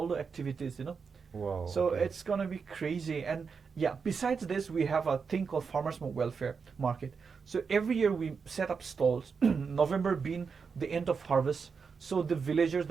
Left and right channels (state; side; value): quieter; left; 5.5 dB